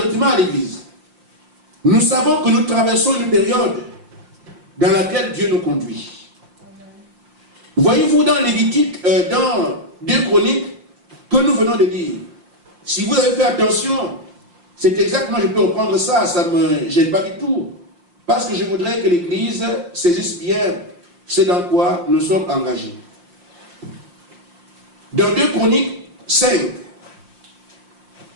à l'Église. Nous savons que nous traversons une période dans laquelle Dieu nous conduit. Voyez-vous dans Lévitique, dans 2 Chroniques, que nous venons de lire. Si vous avez fait attention, c'est exactement, je peux reprendre ça, ça ne me gêne pas du tout. Parce que je voudrais que l'Église saisisse bien ce dans quoi nous sommes engagés. Dans 2 Chroniques 5.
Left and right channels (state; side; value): late; left; 5.7 ms